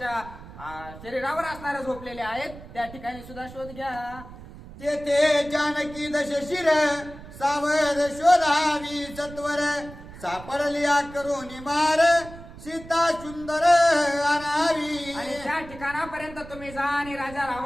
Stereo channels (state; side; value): noise; right; rumble, 16 dB below the sound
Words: शरीरावर असणारे झोपलेले आहेत. त्या ठिकाणी सुद्धा शोध घ्या. तेथे जानकी दशशिर सावध शोधावी सत्वर सापडल्या करून मार सीता सुंदर आणावी. आणि त्या ठिकाणापर्यंत तुम्ही जा आणि राजा